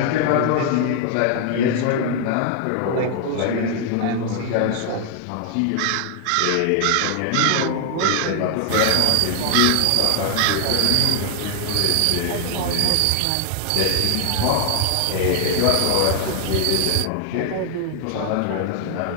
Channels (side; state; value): both; different; correlation 0.00